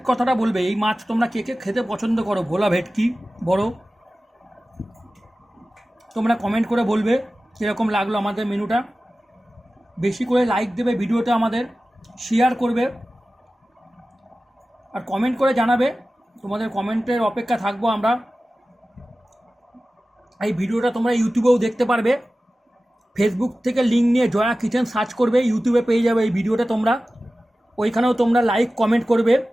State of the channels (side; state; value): both; normal; correlation 0.96